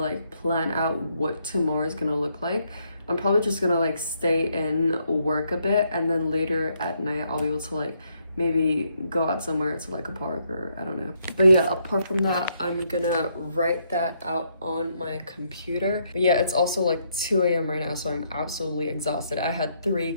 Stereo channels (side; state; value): both; inverted; correlation -0.74